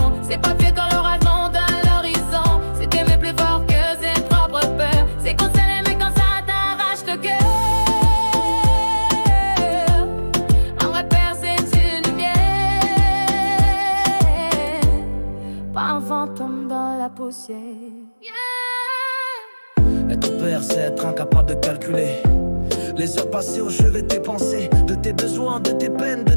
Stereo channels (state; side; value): inverted; both; correlation -1.00